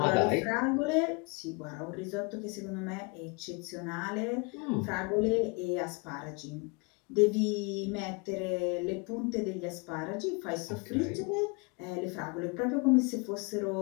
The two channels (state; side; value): quieter; right; 30.7 dB